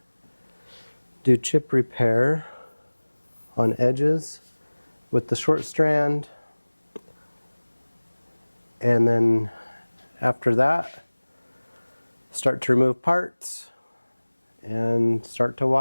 do chip repair on edges with the short strand, and then after that start to remove parts and start to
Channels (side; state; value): both; inverted; correlation -1.00